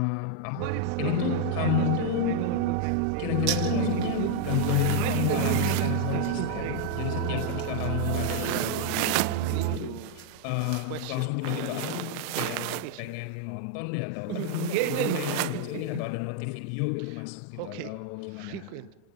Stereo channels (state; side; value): different; both; correlation 0.00